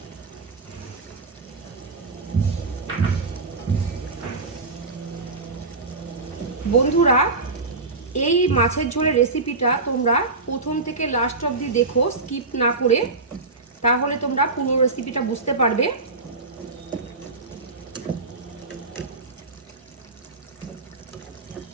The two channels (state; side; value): quieter; left; 3.5 dB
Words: বন্ধুরা, এই মাছের ঝোলের রেসিপিটা তোমরা প্রথম থেকে লাস্ট অবধি দেখো, স্কিপ না করে, তাহলে তোমরা পুরো রেসিপিটা বুঝতে পারবে।